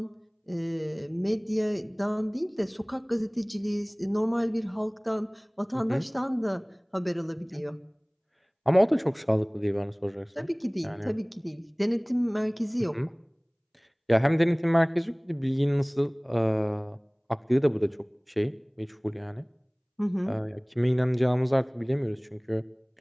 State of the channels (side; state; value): both; identical; correlation 1.00